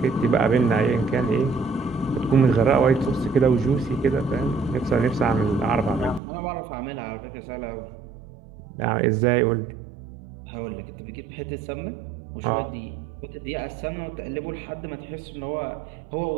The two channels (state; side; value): drops out; left; at 6.2 s